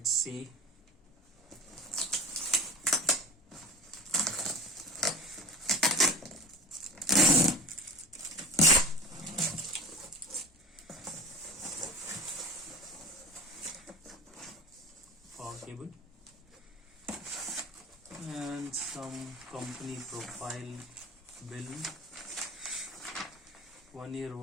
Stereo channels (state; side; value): normal; both; correlation 0.35